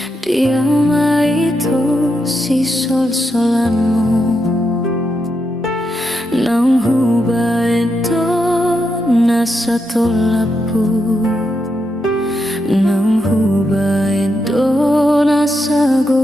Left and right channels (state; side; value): normal; both; correlation 0.83